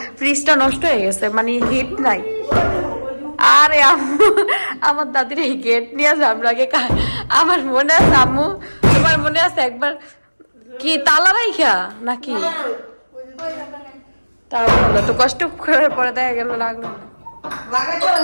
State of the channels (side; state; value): both; inverted; correlation -1.00